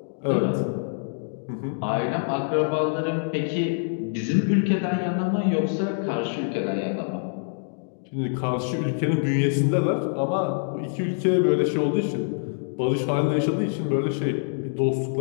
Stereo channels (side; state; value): right; silent; digital silence